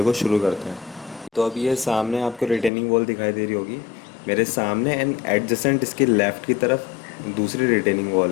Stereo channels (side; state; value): right; drops out; at 2.7 s